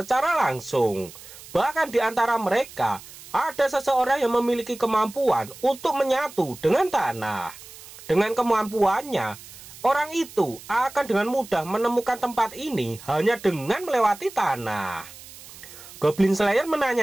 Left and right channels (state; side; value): noise; right; hiss, 17 dB below the sound